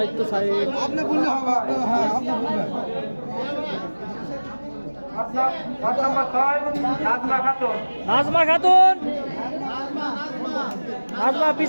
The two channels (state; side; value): inverted; both; correlation -1.00